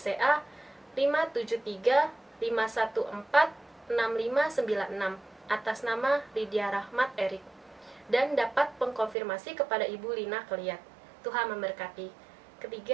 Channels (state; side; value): drops out; left; at 9.2 s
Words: 573514656 atas nama Lydia Rahmat Erik, dan dapat mengkonfirmasi kepada Ibu Lina Keliat. Tuhan memberkati.